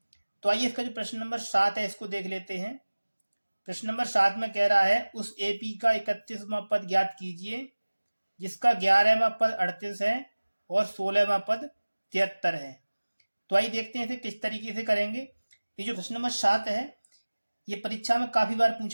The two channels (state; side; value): inverted; both; correlation -1.00